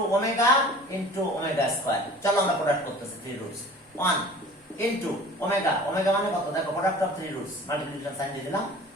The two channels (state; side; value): normal; both; correlation 0.44